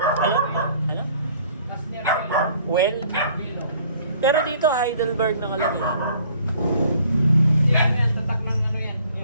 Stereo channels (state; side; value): inverted; both; correlation -0.57